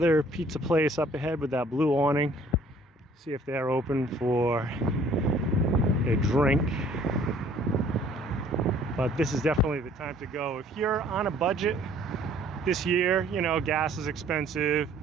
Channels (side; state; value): both; normal; correlation 0.57